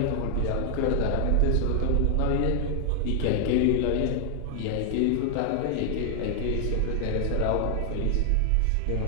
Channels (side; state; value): both; different; correlation 0.00